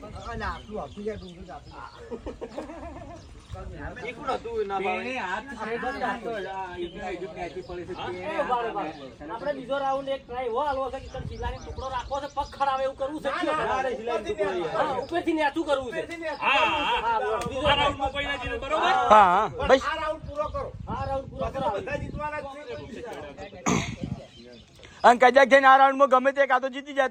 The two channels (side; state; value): both; identical; correlation 1.00